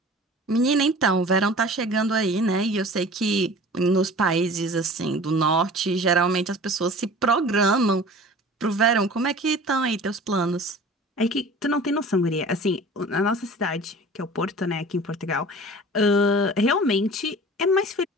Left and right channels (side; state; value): both; normal; correlation 0.42